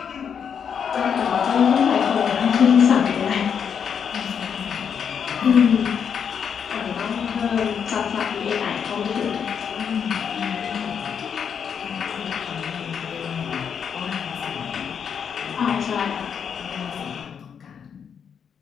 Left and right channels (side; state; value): right; quieter; 7.4 dB